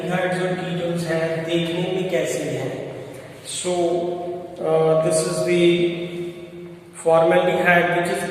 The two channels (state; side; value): identical; both; correlation 1.00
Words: और ketones हैं देखने में कैसे हैं। So this is the formaldehyde, which is